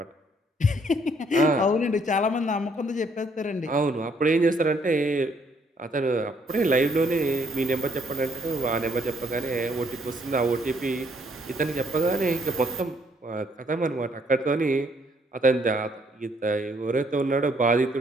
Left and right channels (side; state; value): both; normal; correlation 0.68